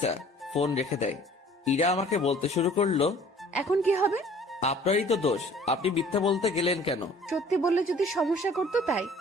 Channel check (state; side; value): normal; both; correlation 0.51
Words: ফোন রেখে দেয়। ইরা আমাকে বলতে শুরু করলো, এখন কি হবে? আপনারই তো দোষ, আপনি মিথ্যা বলতে গেলেন কেন? সত্যি বললে যদি সমস্যা করতো তাই।